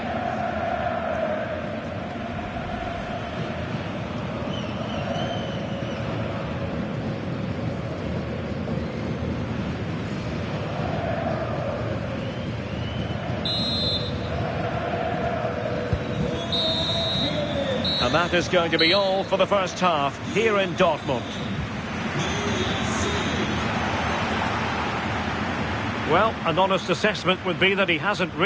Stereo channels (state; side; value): identical; both; correlation 1.00